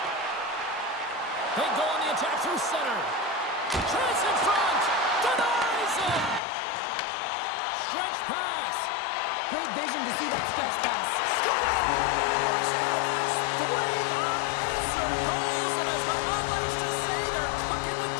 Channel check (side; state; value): right; drops out; at 6.4 s